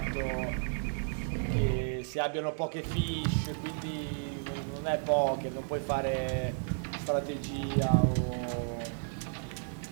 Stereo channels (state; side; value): silent; left; 56 dB below the other